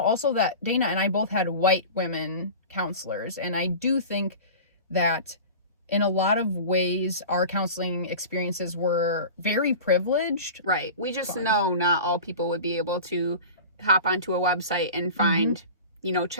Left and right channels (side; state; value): both; inverted; correlation -0.35